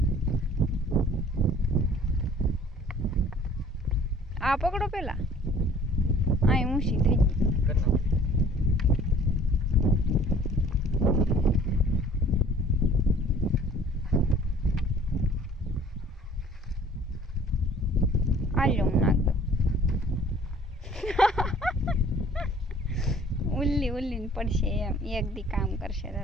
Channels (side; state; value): both; normal; correlation 0.52